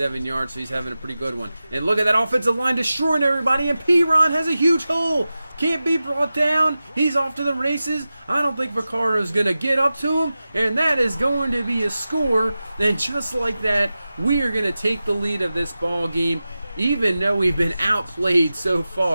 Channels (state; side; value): inverted; both; correlation -0.94